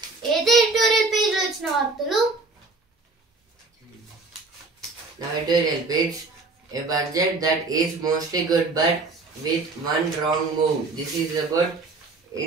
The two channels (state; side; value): quieter; left; 3.6 dB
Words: ఏదో ఎడిటోరియల్ పేజ్ లో వచ్చిన వార్తలు. Now editorial page, a budget that is mostly good but with one wrong move. This is about